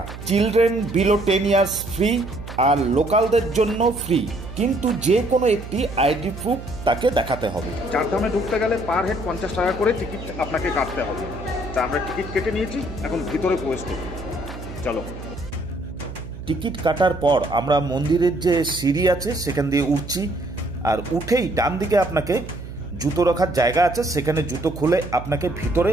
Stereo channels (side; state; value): right; noise; hum, 12 dB below the sound